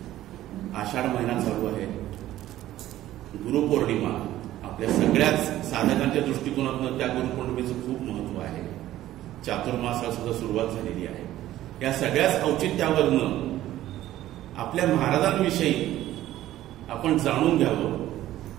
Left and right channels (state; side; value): quieter; left; 14.1 dB